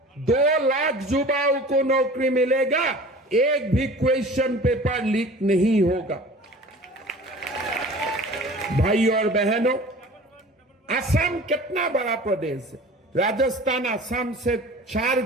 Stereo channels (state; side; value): normal; both; correlation 0.42